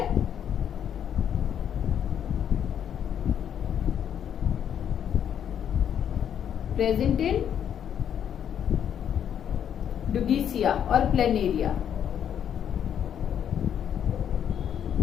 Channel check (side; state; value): right; quieter; 9.1 dB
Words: प्रेजेंट इन डुगीसिया और प्लेनेरिया।